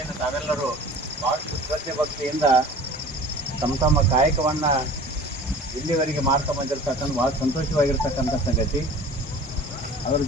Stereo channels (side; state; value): both; normal; correlation 0.42